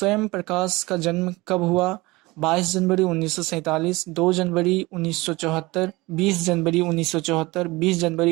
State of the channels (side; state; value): left; quieter; 22.0 dB